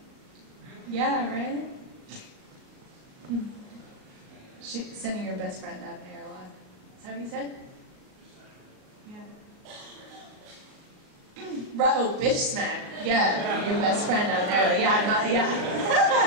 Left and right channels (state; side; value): late; left; 37 ms